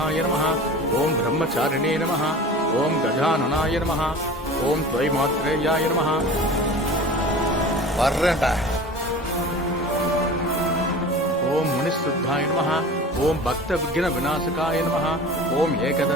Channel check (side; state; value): both; normal; correlation 0.38